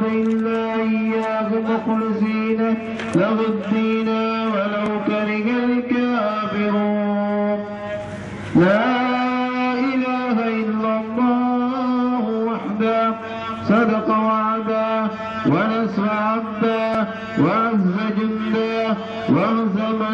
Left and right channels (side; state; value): both; identical; correlation 1.00